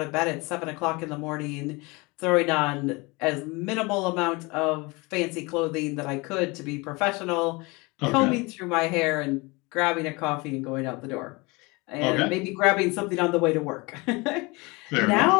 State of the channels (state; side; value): quieter; right; 25.7 dB